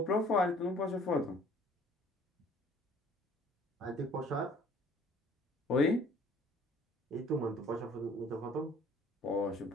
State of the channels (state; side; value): normal; both; correlation 0.54